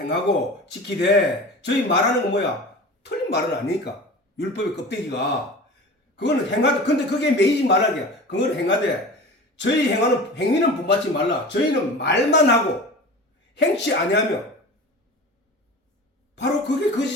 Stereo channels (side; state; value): both; normal; correlation 0.35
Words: 지키되 저희 말하는 건 뭐야? 틀린 말은 아니니까. 율법의 껍데기가 그거는 행하되, 근데 그게 매이지 말라게. 그건 행하되, 저희 행위는 본받지 말라. 저희는 말만 하고 행치 아니하며. 바로 그게 거짓